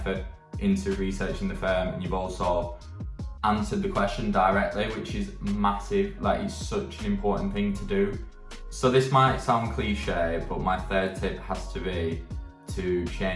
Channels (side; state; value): both; identical; correlation 1.00